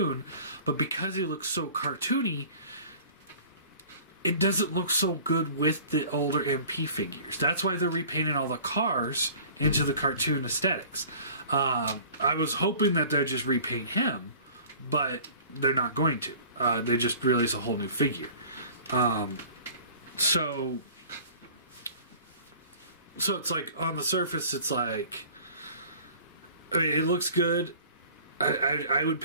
but because he looks so cartoony, it doesn't look so good with the older MP figures. That's why they're repainting all the cars into the cartoon aesthetics. I was hoping that they'd just repaint him, but they're not going to. They just release a whole new figure. So it's like, on the surface, it's like, I mean, it looks good. I would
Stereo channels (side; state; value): both; inverted; correlation -0.46